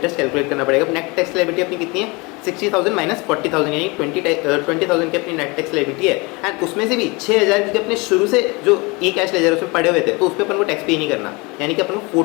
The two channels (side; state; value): right; quieter; 26.8 dB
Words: कैलकुलेट करना पड़ेगा। नेट टैक्स लायबिलिटी अपनी कितनी है, 60,000 माइनस 40,000 यानी 20,000 की अपनी नेट टैक्स लायबिलिटी है। एंड उसमें से भी 6,000 क्योंकि अपने शुरू से जो ई कैश लेजर उसमें पड़े हुए थे तो उस पर अपन को टैक्स पे नहीं करना, यानी कि अपन को